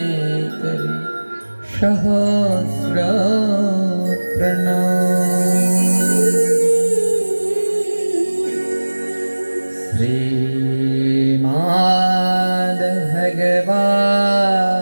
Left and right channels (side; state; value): both; inverted; correlation -1.00